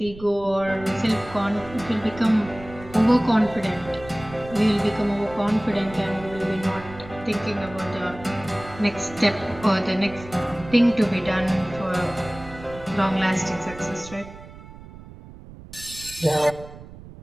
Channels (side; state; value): right; noise; rumble, 17 dB below the sound